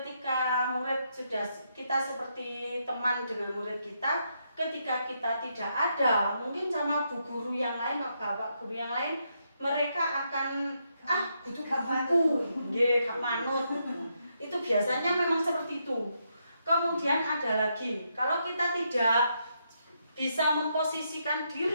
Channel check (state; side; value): inverted; both; correlation -0.79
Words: murid sudah kita seperti teman dengan murid kita, ketika kita tidak ada, mungkin sama bu guru yang lain, bapak guru yang lain, mereka akan butuh buku, gak manut. Itu biasanya memang seperti itu. Kemudian ada lagi, kalau kita tidak bisa memposisikan